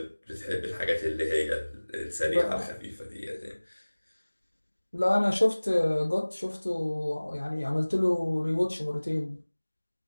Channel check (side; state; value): both; inverted; correlation -1.00